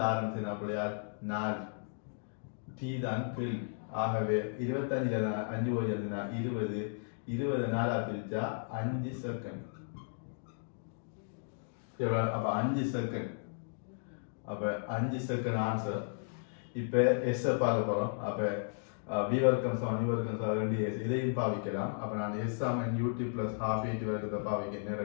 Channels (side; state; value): right; silent; digital silence